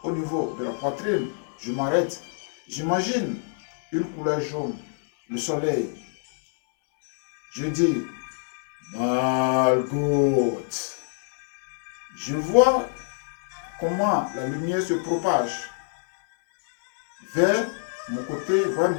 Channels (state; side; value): silent; right; 61 dB below the other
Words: au niveau de la poitrine. Je m'arrête. J'imagine une couleur jaune, le soleil. Je dis Malgout. Je vois comment la lumière se propage vers mon côté, vers